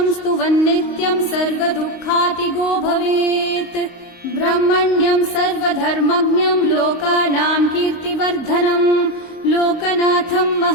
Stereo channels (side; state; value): right; late; 22 ms